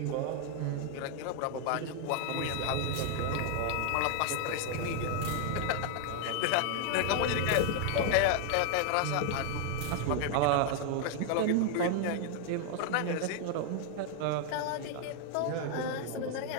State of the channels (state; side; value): different; both; correlation 0.00